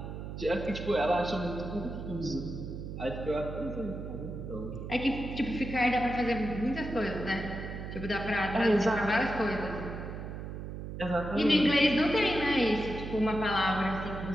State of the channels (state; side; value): noise; right; hum, 8 dB below the sound